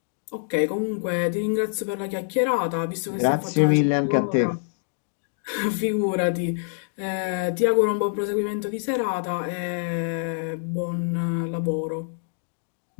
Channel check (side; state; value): right; silent; digital silence